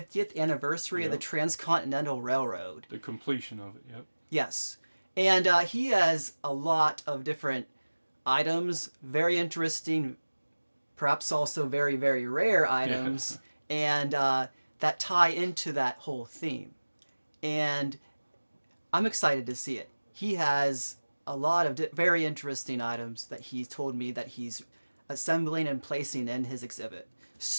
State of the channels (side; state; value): both; inverted; correlation -1.00